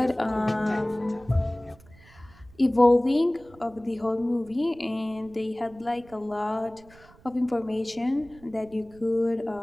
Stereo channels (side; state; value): right; noise; rumble, 25 dB below the sound